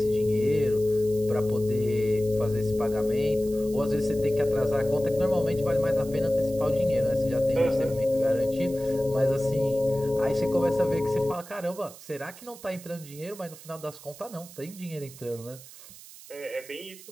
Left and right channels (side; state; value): right; noise; hiss, 18 dB below the sound